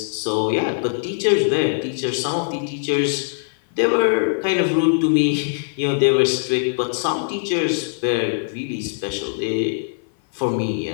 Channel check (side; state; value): right; silent; 57 dB below the other